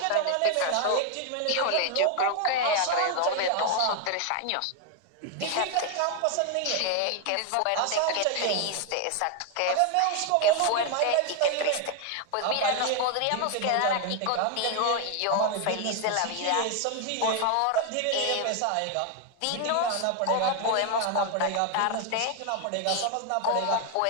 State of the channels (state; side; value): different; both; correlation 0.01